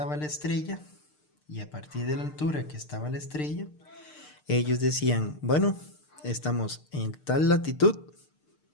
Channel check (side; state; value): right; late; 6.7 ms